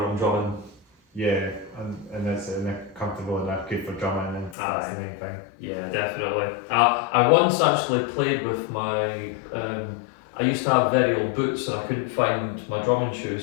I'm drumming. Yeah, and they're comfortable enough, good for drumming, and that's the main thing. Yeah, definitely. I once actually played with my. I used to have very old boots, and I couldn't find my drumming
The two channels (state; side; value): drops out; right; at 4.5 s